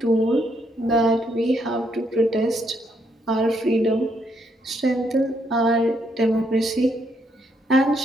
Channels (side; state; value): both; normal; correlation 0.74